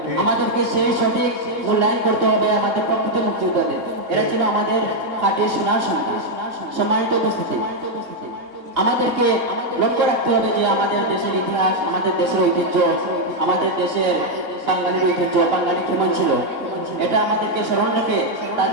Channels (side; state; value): left; late; 2.8 ms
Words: আমাদেরকে সেই সঠিক মূল্যায়ন করতে হবে আমাদের প্রকৃত মুক্তিযোদ্ধাদের। এরা ছিল আমাদের খাঁটি সোনার সন্তান। সম্মানিত উপস্থিতি, আমাদেরকে লক্ষ্য রাখতে হবে যে আমাদের দেশের ইতিহাস, আমাদের দেশের ঐতিহ্য, আমাদের দেশের বাঙালির ঐতিহ্য, বাঙালি কেমন ছিল, এটা আমাদেরকে স্মরণ রেখে